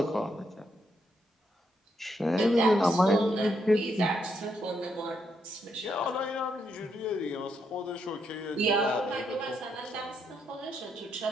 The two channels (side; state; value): both; normal; correlation 0.78